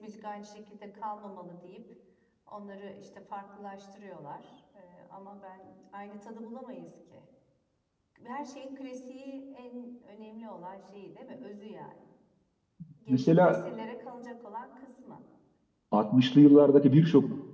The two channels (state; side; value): identical; both; correlation 1.00